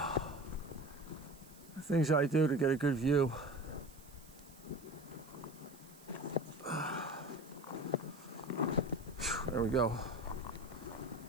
things I do to get a good view. There we go.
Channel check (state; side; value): noise; right; hiss, 22 dB below the sound